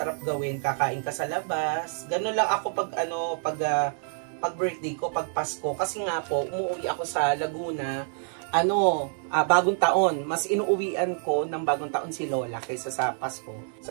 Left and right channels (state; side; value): silent; left; digital silence